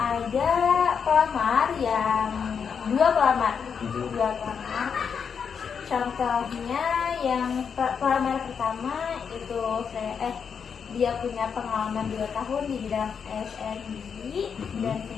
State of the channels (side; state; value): right; quieter; 6.7 dB